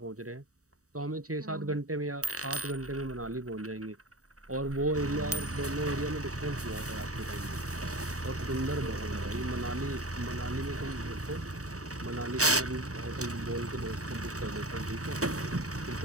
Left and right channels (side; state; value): left; late; 0.66 ms